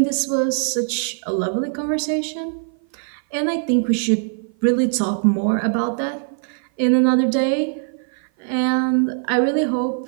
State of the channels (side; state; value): left; silent; 55 dB below the other